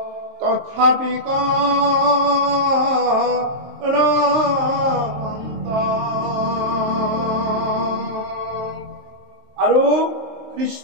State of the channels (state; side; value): late; left; 23 ms